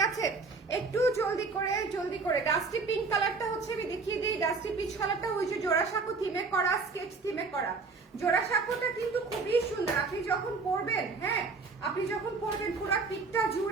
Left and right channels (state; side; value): quieter; left; 4.3 dB